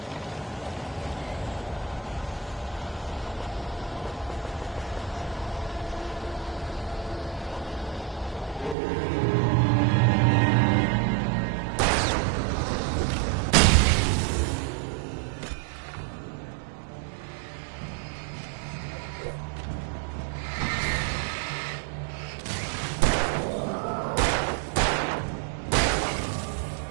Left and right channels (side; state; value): left; drops out; at 8.8 s